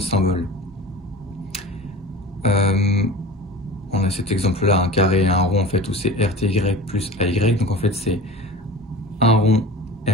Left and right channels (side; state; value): both; normal; correlation 0.36